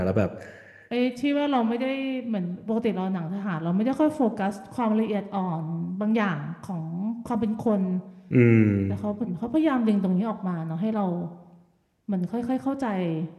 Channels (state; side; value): identical; both; correlation 1.00